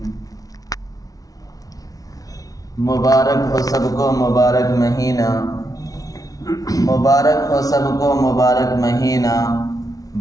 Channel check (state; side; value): late; right; 0.18 ms